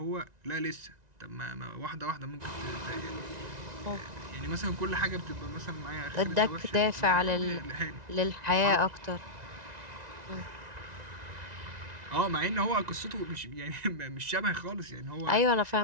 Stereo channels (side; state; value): left; late; 1.9 ms